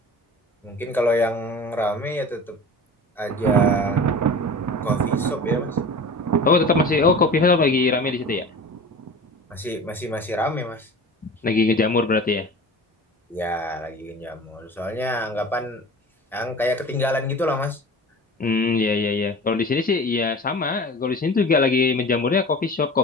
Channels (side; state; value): both; normal; correlation 0.38